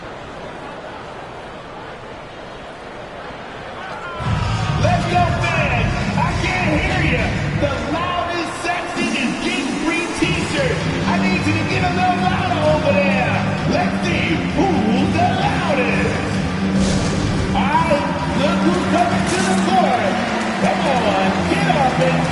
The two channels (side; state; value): both; identical; correlation 1.00